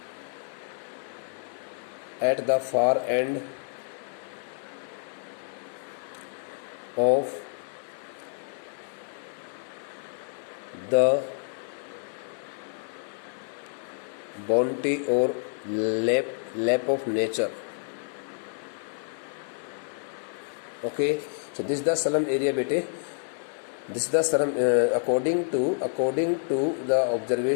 at the far end of the bounty or lap of nature. Okay, so this is the slum area, bete. This is the slum according to the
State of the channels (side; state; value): right; silent; digital silence